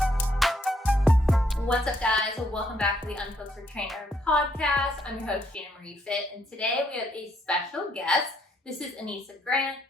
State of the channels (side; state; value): both; normal; correlation 0.71